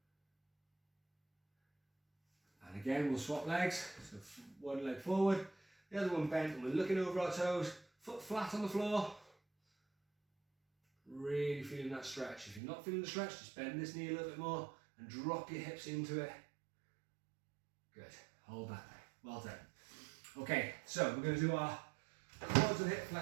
And again, we'll swap legs. So one leg forward, the other one bent, and we're looking over our toes, foot flat on the floor. Really feeling that stretch. If you're not feeling the stretch, just bend this knee a little bit more and drop your hips into it. Good. Hold that there. Well done. Okay, so we're going to do our quads and hip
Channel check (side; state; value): left; drops out; at 12.6 s